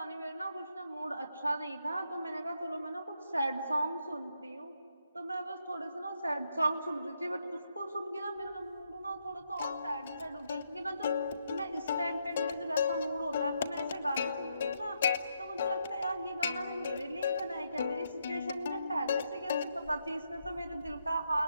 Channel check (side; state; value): both; inverted; correlation -0.78